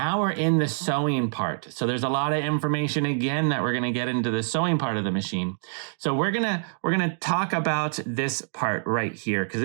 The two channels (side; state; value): left; silent; digital silence